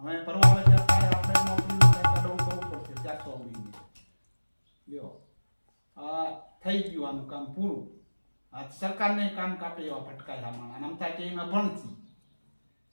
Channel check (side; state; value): both; inverted; correlation -1.00